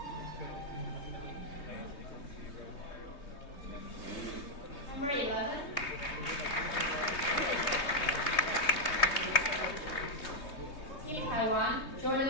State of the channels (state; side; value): late; right; 3.2 ms